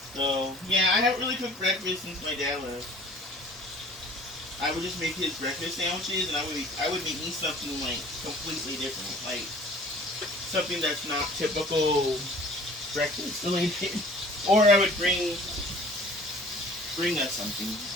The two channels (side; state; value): both; normal; correlation 0.49